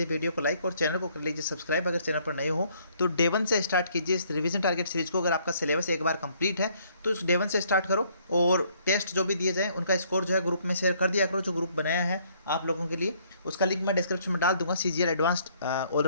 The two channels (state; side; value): inverted; both; correlation -0.64